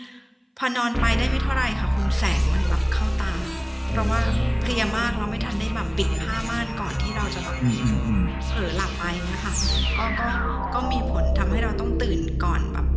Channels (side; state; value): both; identical; correlation 1.00